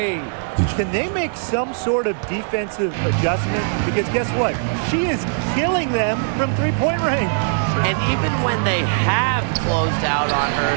Can they make some sort of defensive adjustment? Because guess what? She is killing them from three-point range. And even when they have closed out on her,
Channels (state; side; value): silent; left; digital silence